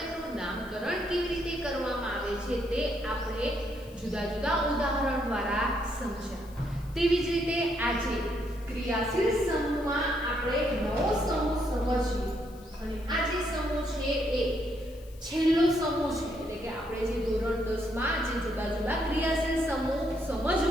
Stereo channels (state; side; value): noise; left; hiss, 25 dB below the sound